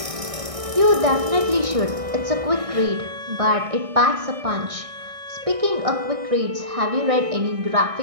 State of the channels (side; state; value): left; late; 1.6 ms